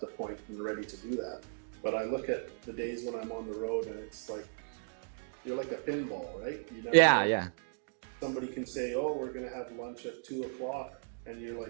the point and ready to do that. But I look at the days when I'm on the road, and it's like, you're like a pinball, right? You never know. Somebody can say, oh, we're going to have lunch at 2 o'clock. And you're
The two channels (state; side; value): silent; left; digital silence